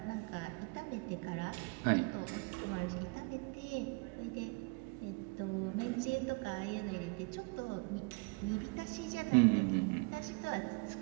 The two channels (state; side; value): quieter; left; 30.4 dB